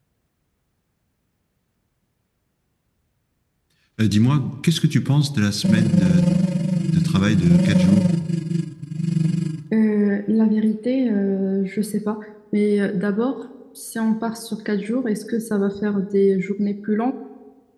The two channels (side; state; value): both; identical; correlation 1.00